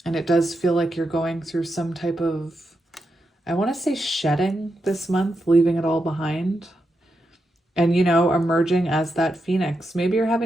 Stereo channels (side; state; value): both; normal; correlation 0.86